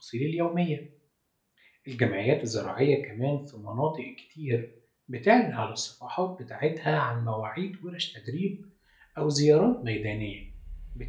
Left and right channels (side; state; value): both; identical; correlation 1.00